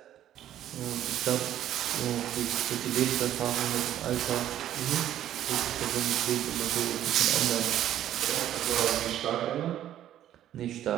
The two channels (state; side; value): quieter; left; 11.8 dB